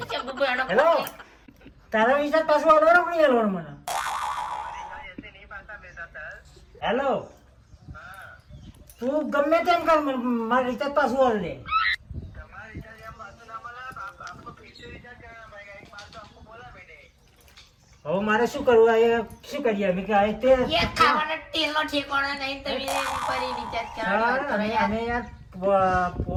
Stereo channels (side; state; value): both; identical; correlation 1.00